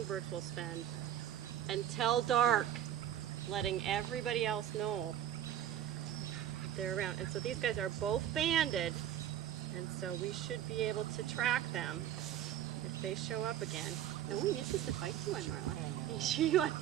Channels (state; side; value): quieter; left; 11.0 dB